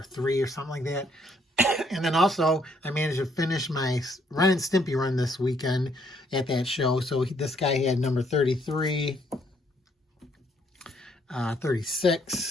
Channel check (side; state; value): both; normal; correlation 0.69